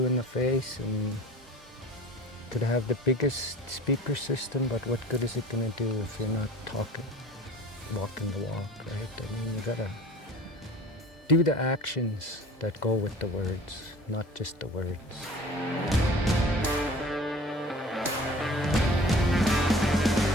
in the face, and could have the biggest speaker system, but what good is it going to do if you're not talking, walking the walk, right? I mean, you gotta do the actions that go with the words, not just the words.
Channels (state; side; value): normal; both; correlation 0.43